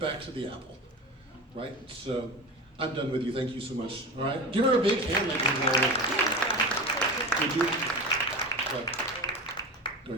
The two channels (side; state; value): both; normal; correlation 0.27